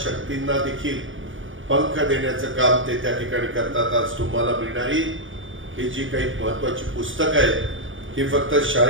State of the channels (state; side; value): late; left; 0.57 ms